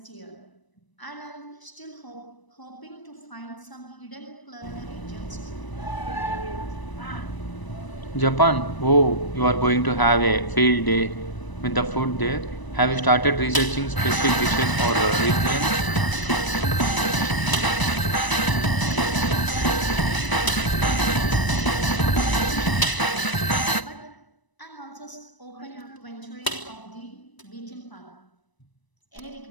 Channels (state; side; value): late; right; 1.0 ms